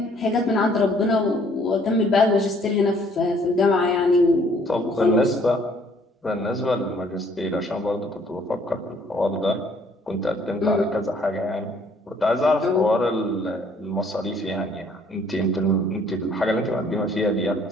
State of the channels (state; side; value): normal; both; correlation 0.62